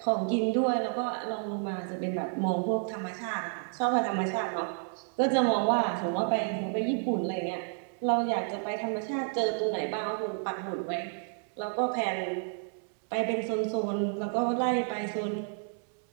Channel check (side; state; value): left; silent; 57 dB below the other